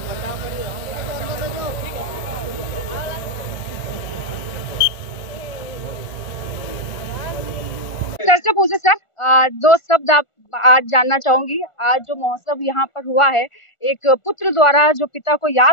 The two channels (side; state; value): right; late; 1.4 ms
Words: सर से पूछे सर, 2 शब्द आप आज जानना चाहूंगी। आज जो महोत्सव यहाँ पर हुआ है, एक पुत्र द्वारा जो पिता को